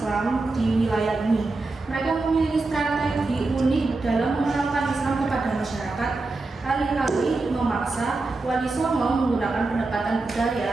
di wilayah ini. Mereka memiliki strategi unik dalam mengenalkan Islam kepada masyarakat. Alih-alih memaksa, Wali Songo menggunakan pendekatan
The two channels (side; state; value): left; quieter; 3.4 dB